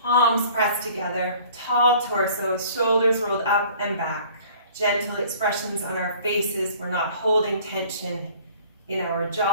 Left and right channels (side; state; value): both; inverted; correlation -0.51